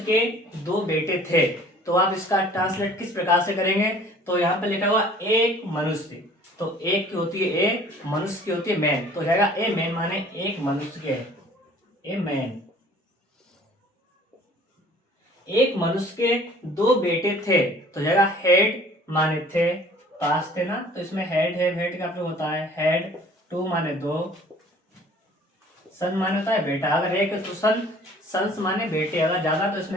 के दो बेटे थे। तो आप इसका ट्रांसलेट किस प्रकार से करेंगे? तो यहाँ पर लिखा हुआ एक मनुष्य, तो एक की होती है ए, मनुष्य की होती है मैन, तो जाएगा ए मैन माने एक मनुष्य के, ए मैन। एक मनुष्य के दो बेटे थे, तो जाएगा हेड माने थे, पास थे ना, तो इसमें हेड है, हेड का प्रयोग होता है हेड। टू माने दो, सन माने होता है बेटा। अगर एक तो सन, सन्स माने बेटे, अगर ज्यादा तो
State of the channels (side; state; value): both; normal; correlation 0.51